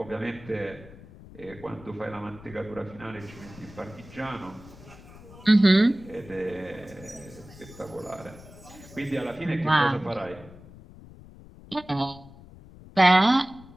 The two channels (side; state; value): left; noise; rumble, 19 dB below the sound